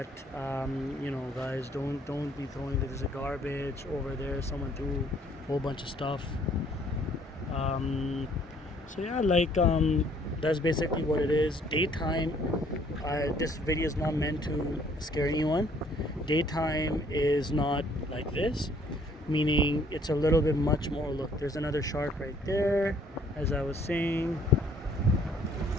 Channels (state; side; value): normal; both; correlation 0.61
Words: guys, don't be throwing. There's a garbage over there. Someone threw a whole bunch of stuff. So yeah, that's basically what it is. Daytime. This video is not meant to scare anyone. Daytime is not like this, meaning it's a little bit much more. Look, there's another shark right there. As I was saying,